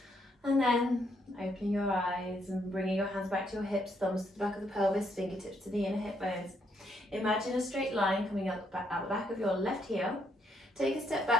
And then opening your eyes and bringing your hands back to your hips, thumbs to the back of the pelvis, fingertips to the inner hip bones. Imagine a straight line coming out the back of your left heel. Take a step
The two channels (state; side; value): normal; both; correlation 0.74